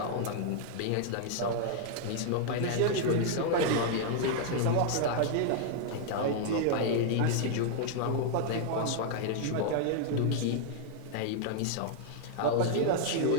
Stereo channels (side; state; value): both; different; correlation -0.01